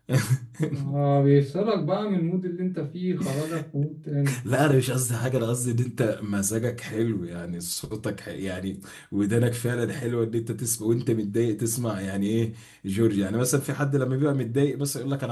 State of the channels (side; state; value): both; identical; correlation 1.00